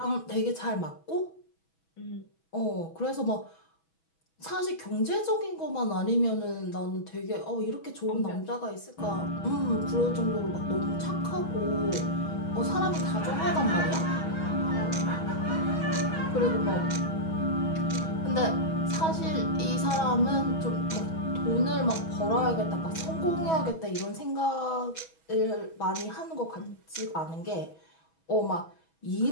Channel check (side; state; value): right; late; 6.2 ms